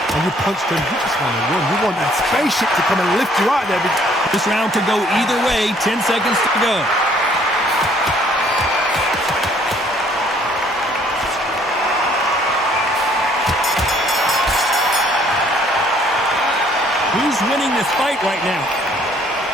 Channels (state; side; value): normal; both; correlation 0.62